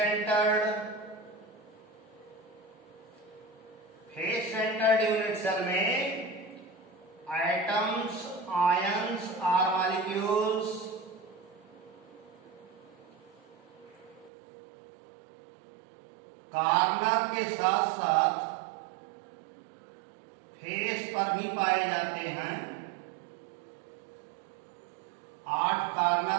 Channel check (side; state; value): left; drops out; at 14.3 s